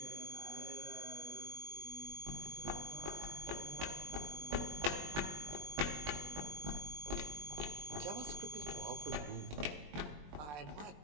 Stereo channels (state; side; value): late; left; 20 ms